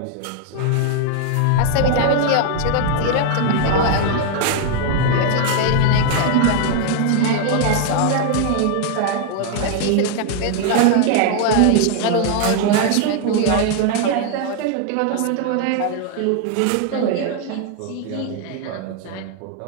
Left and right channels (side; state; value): both; different; correlation 0.00